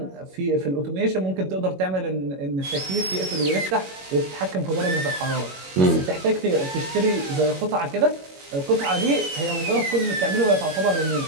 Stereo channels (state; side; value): late; left; 21 ms